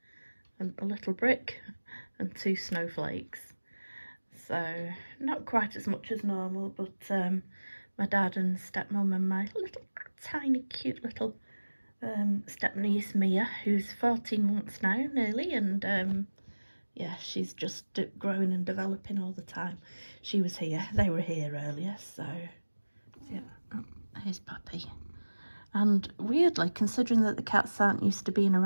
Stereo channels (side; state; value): both; inverted; correlation -1.00